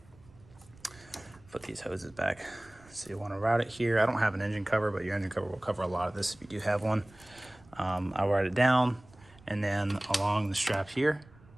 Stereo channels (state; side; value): noise; right; rumble, 25 dB below the sound